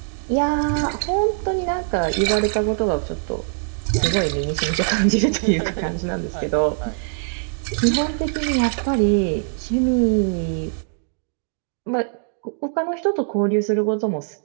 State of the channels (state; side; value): silent; left; digital silence